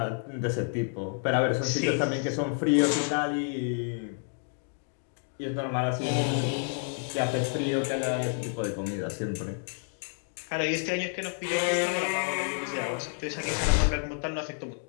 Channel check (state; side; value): silent; right; 58 dB below the other